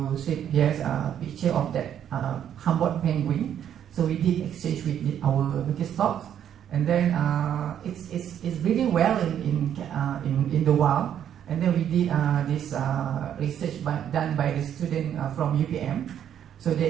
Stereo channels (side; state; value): left; quieter; 9.7 dB